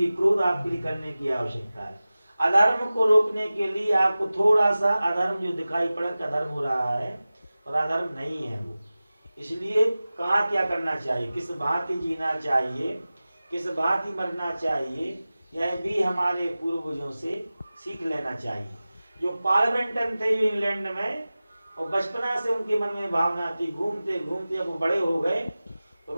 क्रोध आपके लिए करने की आवश्यकता है। अधर्म को रोकने के लिए आपको थोड़ा सा अधर्म जो दिखाई पड़ा कि अधर्म हो रहा है, और अधर्म नहीं है वो। इसलिए कहाँ क्या करना चाहिए, किस भांति जीना चाहिए, किस भांति मरना चाहिए, यह भी हमारे पूर्वजों से सीख लेना चाहिए। जो पार्लिमेंटन थे इंग्लैंड में, और बचपना से उनके मन में भावना थी, घूमते घूमते अब वो बड़े हो गए तो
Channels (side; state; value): both; inverted; correlation -0.97